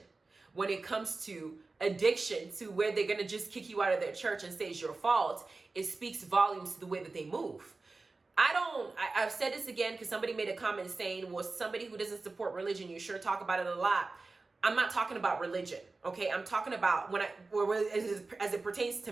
when it comes to addiction, to where they're going to just kick you out of their church and say it's your fault, it speaks volumes to the way that they move. I've said this again because somebody made a comment saying, well, somebody who doesn't support religion, you sure talk about it a lot. I'm not talking about religion, okay? I'm talking about as it pertains to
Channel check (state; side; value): quieter; left; 3.6 dB